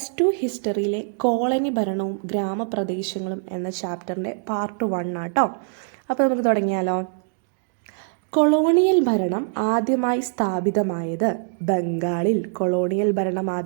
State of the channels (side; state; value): left; silent; digital silence